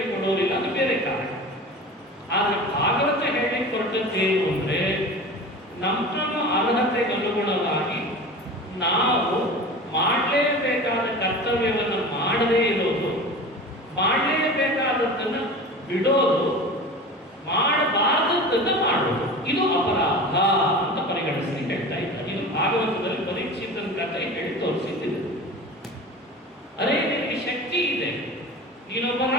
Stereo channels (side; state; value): both; normal; correlation 0.34